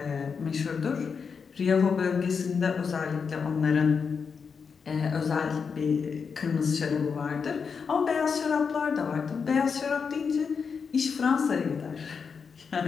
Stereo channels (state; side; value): quieter; right; 5.8 dB